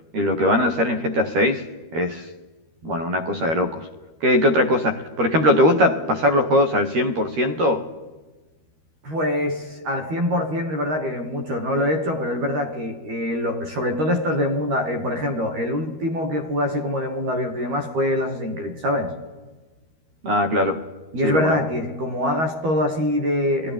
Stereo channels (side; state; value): left; late; 13 ms